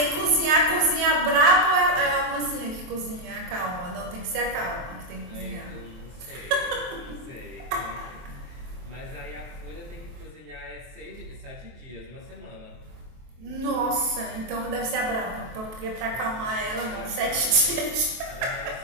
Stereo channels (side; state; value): left; late; 23 ms